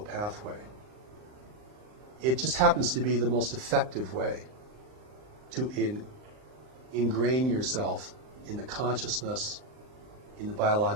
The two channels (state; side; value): late; left; 39 ms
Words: pathway. It just happens to be the most effective way to ingrain yourself in the consciousness, in the